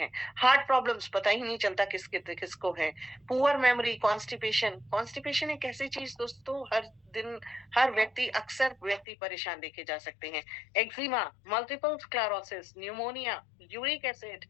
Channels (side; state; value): right; drops out; at 9.1 s